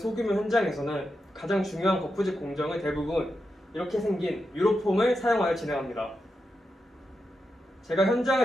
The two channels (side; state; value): both; normal; correlation 0.87